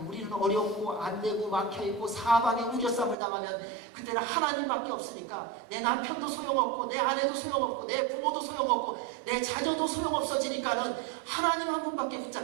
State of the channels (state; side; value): drops out; left; at 3.2 s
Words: 우리는 어렵고 안되고 막혀있고 사방에 우겨쌈을 당하면 그때는 하나님밖에 없으니까 내 남편도 소용없고 내 아내도 소용없고 내 부모도 소용없고 내 자녀도 소용없어지니까는 하나님 한 분밖에